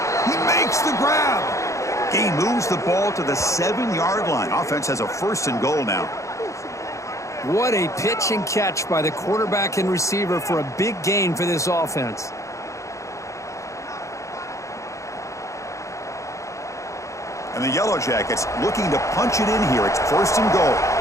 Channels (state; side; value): late; right; 0.15 ms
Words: He makes the grab. Gain moves the ball to the 7-yard line. Offense has a 1st and goal now. What a pitch and catch by the quarterback and receiver for a big gain for this offense. And the Yellow Jackets looking to punch it in here. It's 1st and goal.